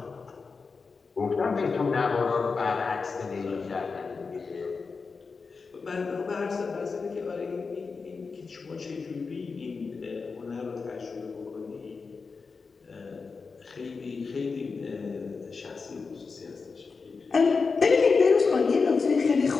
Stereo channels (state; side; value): quieter; right; 4.7 dB